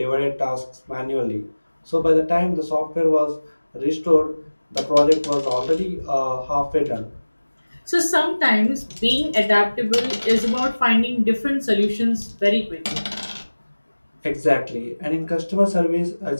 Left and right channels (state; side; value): inverted; both; correlation -1.00